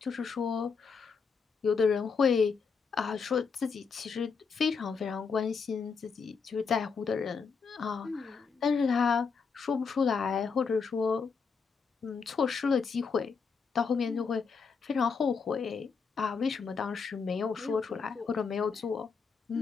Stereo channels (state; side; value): quieter; right; 5.5 dB